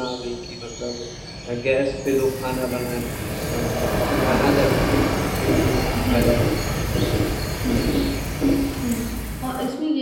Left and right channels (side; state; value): both; identical; correlation 1.00